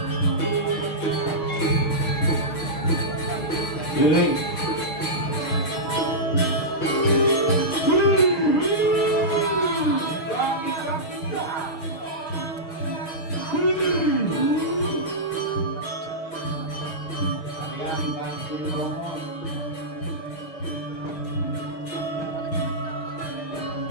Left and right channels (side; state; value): right; late; 6.4 ms